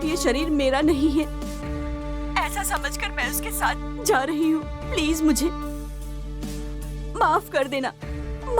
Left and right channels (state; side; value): identical; both; correlation 1.00